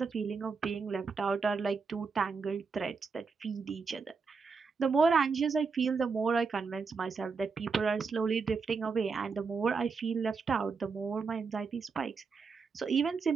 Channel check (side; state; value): left; quieter; 5.0 dB